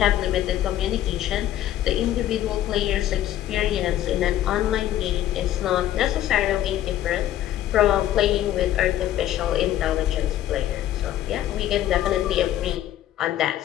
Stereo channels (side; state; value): right; quieter; 12.5 dB